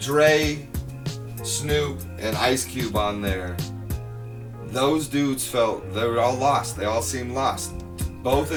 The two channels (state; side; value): identical; both; correlation 1.00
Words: Snoop, and Ice Cube on there. Those dudes felt they were all lost. They all seemed lost. Both